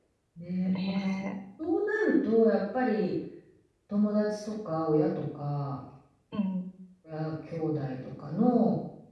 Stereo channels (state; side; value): identical; both; correlation 1.00